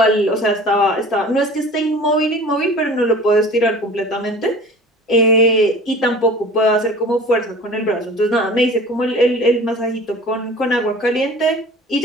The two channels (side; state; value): both; normal; correlation 0.42